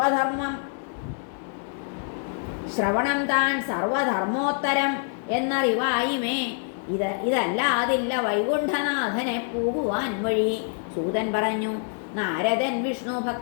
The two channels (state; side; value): silent; right; 57 dB below the other